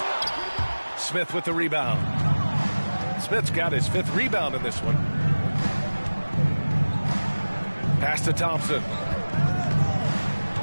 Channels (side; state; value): both; inverted; correlation -1.00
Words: Smith with the rebound. Smith's got his 5th rebound in this one. Pass to Thompson.